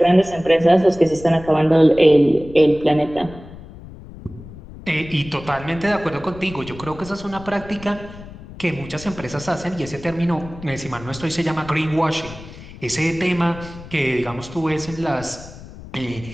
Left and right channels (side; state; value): left; noise; rumble, 16 dB below the sound